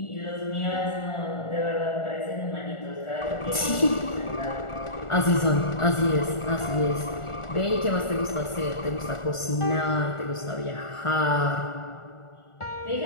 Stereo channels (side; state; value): right; late; 1.4 ms